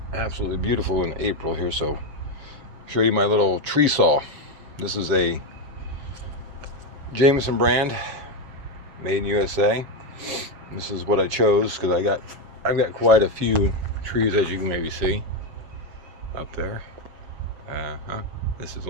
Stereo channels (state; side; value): late; left; 6.7 ms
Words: absolutely beautiful in April here, so I'll show you my little tree saw. This is a Jameson brand, made in USA. This is what I chose because I've got quite a few trees, as you can maybe see up there. This is